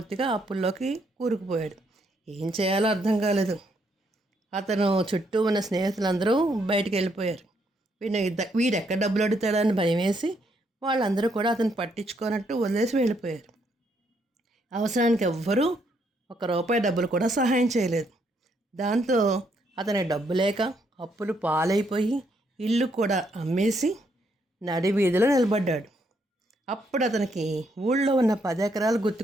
అప్పుల్లోకి కూరుకుపోయాడు. ఏం చేయాలో అర్థం కాలేదు. అతను చుట్టూ ఉన్న స్నేహితులందరూ బయటికి వెళ్ళిపోయారు. వీడెక్కడ డబ్బులు అడుగుతాడని భయం వేసి వాళ్ళందరూ కూడా అతను పట్టించుకోనట్టు వదిలేసి వెళ్ళిపోయారు. అవసరానికి ఎవ్వరూ ₹1 డబ్బులు కూడా సహాయం చేయలేదు. దాంతో అతని డబ్బు లేక అప్పులు పాలైపోయి ఇల్లు కూడా అమ్మేసి నడి వీధిలో నిలబడ్డాడు. అప్పుడు అతనికి ఊళ్ళో ఉన్న 10 ఎకరాలు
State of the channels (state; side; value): normal; both; correlation 0.74